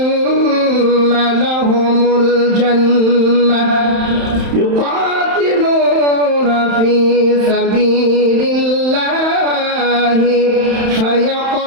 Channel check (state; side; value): late; left; 31 ms